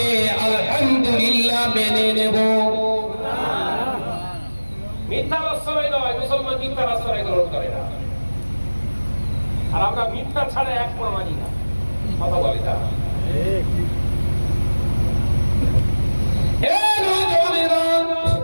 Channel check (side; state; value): both; inverted; correlation -1.00